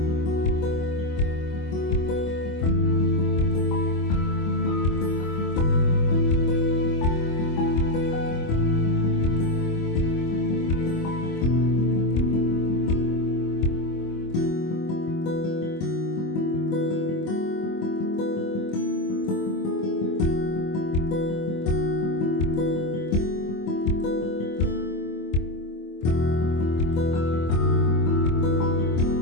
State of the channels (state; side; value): late; right; 25 ms